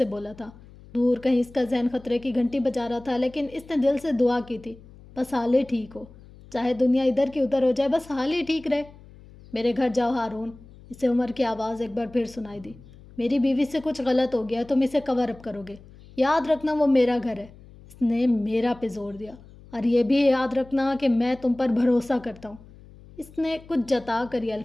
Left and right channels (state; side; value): noise; left; hum, 22 dB below the sound